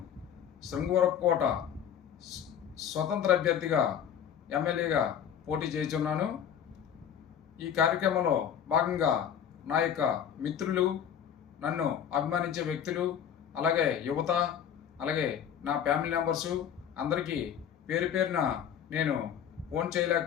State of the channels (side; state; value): right; quieter; 8.9 dB